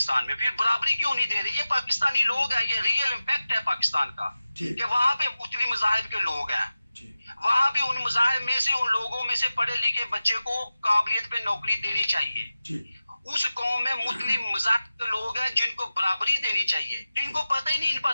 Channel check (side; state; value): both; inverted; correlation -0.94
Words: میں, پھر برابری کیوں نہیں دے رہے. یہ پاکستانی لوگ ہیں, یہ ریئل امپیکٹ ہے پاکستان کا کہ وہاں پہ مختلف مذاہب کے لوگ ہیں. وہاں بھی ان مذاہب میں سے, ان لوگوں میں سے پڑھے لکھے بچے کو قابلیت پہ نوکری دینی چاہیے. اس قوم میں مختلف مذاہب کے لوگ ہیں جن کو برابری دینی چاہیے. ان کو پتہ ہی نہیں ان